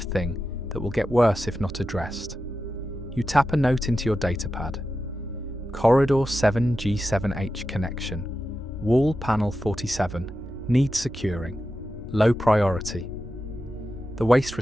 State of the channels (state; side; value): normal; both; correlation 0.91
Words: thing that will get worse if not addressed. You tap a note into your datapad. Corridor 7G7H connection. Wall panel 47. Needs securing. Low priority. The waste